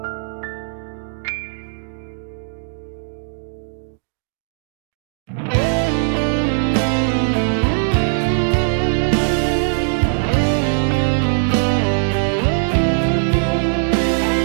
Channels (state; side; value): silent; left; digital silence